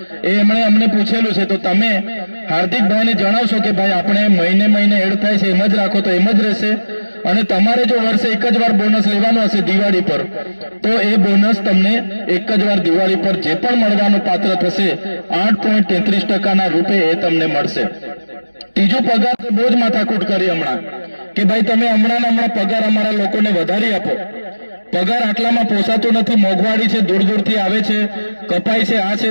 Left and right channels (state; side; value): inverted; both; correlation -1.00